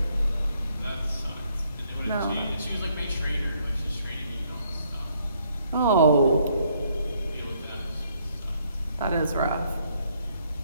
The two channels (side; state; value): both; inverted; correlation -0.68